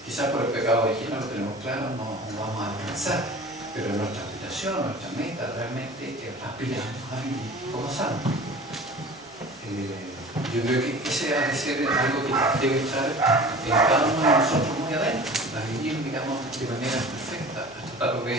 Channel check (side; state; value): both; normal; correlation 0.40